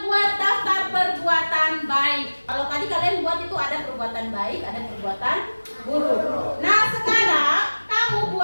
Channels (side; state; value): both; inverted; correlation -1.00